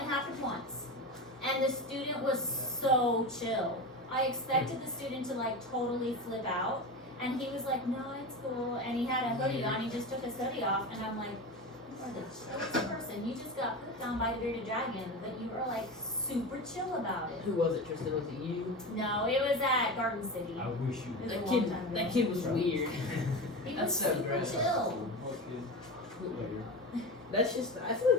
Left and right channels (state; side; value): normal; both; correlation 0.25